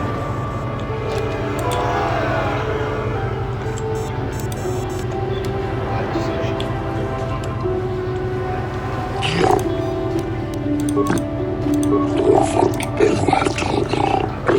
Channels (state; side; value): identical; both; correlation 1.00